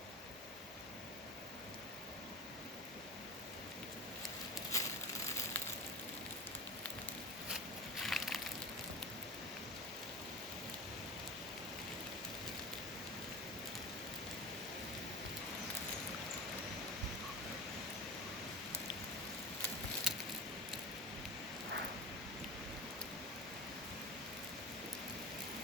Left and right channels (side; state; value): both; normal; correlation 0.32